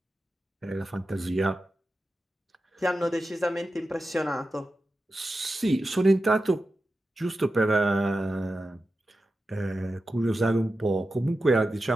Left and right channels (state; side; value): normal; both; correlation 0.91